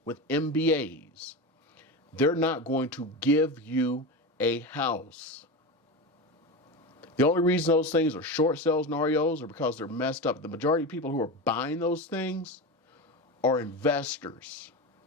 with MBAs. They're not going to give you a house. The only reason those things are short sales and REOs are because they're messed up. The majority of people who are buying those things are investors.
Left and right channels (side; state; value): both; normal; correlation 0.22